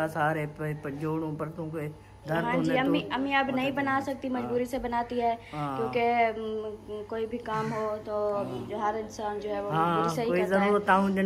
सारे जोड़ों परतों के दर्द हाँ जी। होने अम्मी अब नहीं बना सकती, मजबूरी से बनाती है, क्योंकि कोई भी काम हो तो जो हर इंसान जो है वो मजबूरी से ही करता है।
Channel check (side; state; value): both; identical; correlation 1.00